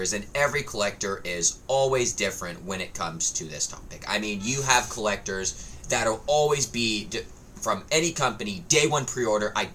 and every collector is always different when it comes to this topic. I mean, you have collectors that'll always be from any company, day one pre-order, I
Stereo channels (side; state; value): both; identical; correlation 1.00